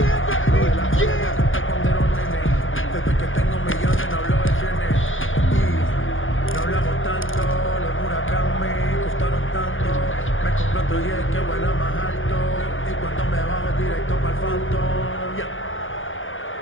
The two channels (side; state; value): right; late; 0.58 ms